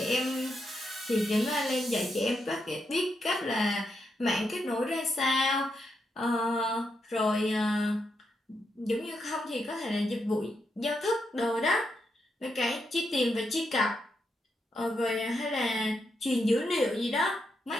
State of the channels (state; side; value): normal; both; correlation 0.82